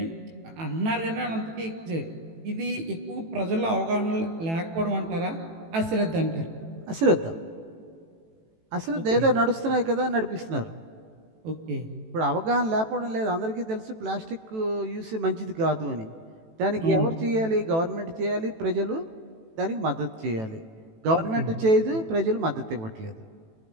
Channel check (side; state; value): left; late; 18 ms